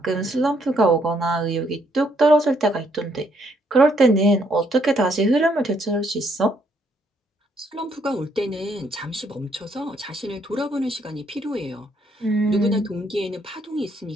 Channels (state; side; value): normal; both; correlation 0.71